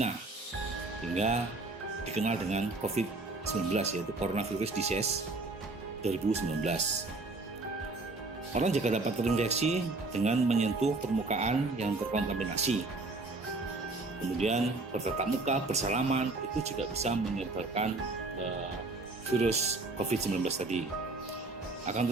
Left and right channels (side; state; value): left; quieter; 3.3 dB